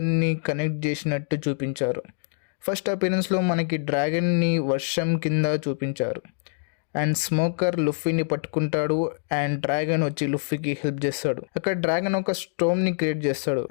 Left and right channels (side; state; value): right; silent; digital silence